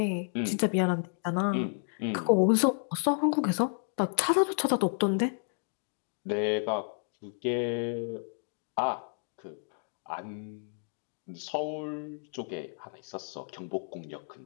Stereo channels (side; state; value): right; silent; 57 dB below the other